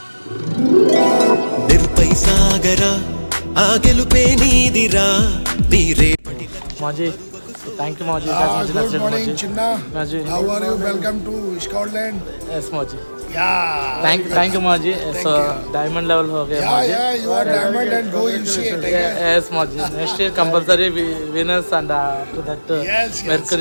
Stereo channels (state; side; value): inverted; both; correlation -1.00